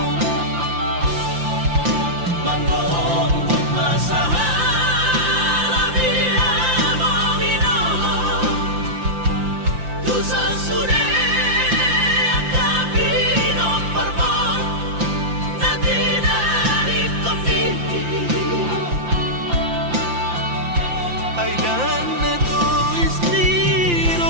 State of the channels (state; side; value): late; left; 5.8 ms